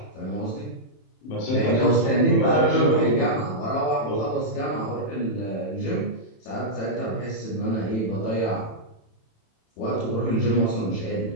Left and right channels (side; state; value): right; late; 27 ms